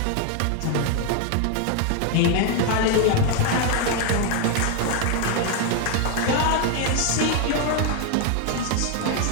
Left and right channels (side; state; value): both; different; correlation 0.01